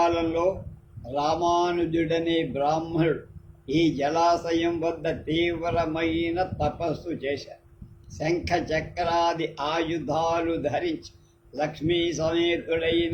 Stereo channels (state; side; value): identical; both; correlation 1.00